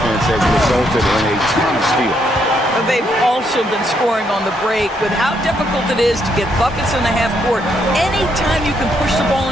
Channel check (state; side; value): normal; both; correlation 0.75